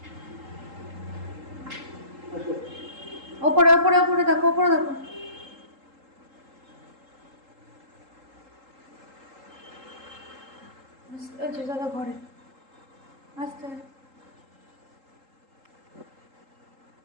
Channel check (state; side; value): late; left; 3.8 ms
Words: ওপরে ওপরে ওপরে দেখো, ওপরে দেখো। আচ্ছা দাদা ঘরে আস্তে